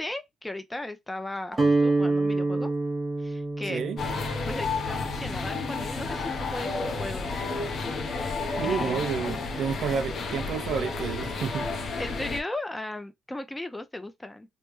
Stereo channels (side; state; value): both; normal; correlation 0.81